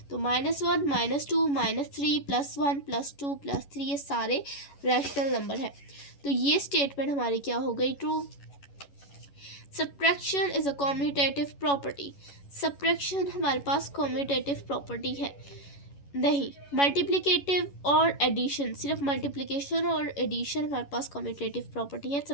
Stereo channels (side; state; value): right; late; 11 ms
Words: तो -1, -2, -3, +1, +2, +3 ये सारे रैशनल नंबर है। तो ये स्टेटमेंट हमारी क्या हो गई? True. Subtraction is a commutative property. Subtraction हमारे पास कॉम्यूटेटिव प्रॉपर्टी है नहीं। मल्टीप्लिकेटिव और एडिशन, सिर्फ मल्टीप्लिकेशन और एडिशन हमारे पास कॉम्यूटेटिव प्रॉपर्टी है,